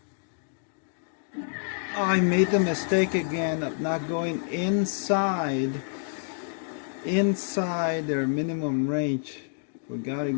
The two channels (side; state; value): right; silent; digital silence